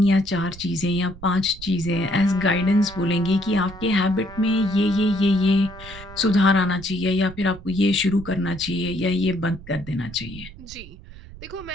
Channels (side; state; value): right; noise; rumble, 16 dB below the sound